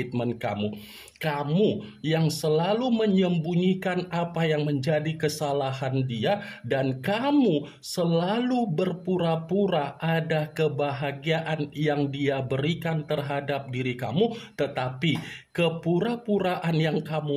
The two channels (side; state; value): both; identical; correlation 1.00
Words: kamu. Kamu yang selalu menyembunyikan apa yang menjadi kesalahan dia, dan kamu selalu berpura-pura ada kebahagiaan yang dia berikan terhadap diri kamu, tetapi kepura-puraan yang